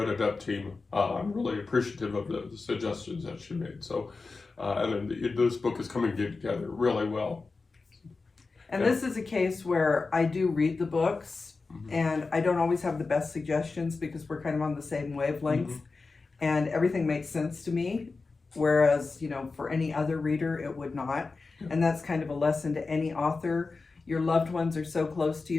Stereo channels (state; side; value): quieter; right; 4.0 dB